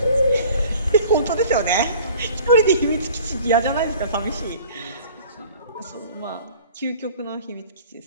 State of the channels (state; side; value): inverted; both; correlation -0.47